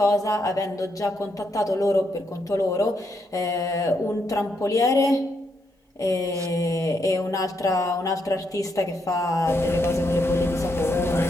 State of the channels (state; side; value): normal; both; correlation 0.78